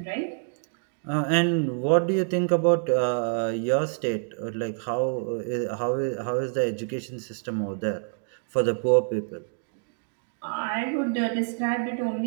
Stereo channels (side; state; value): left; silent; digital silence